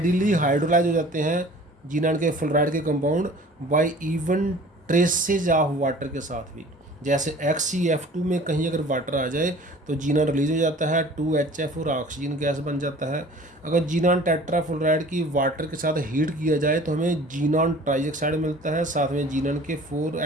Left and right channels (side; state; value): both; normal; correlation 0.46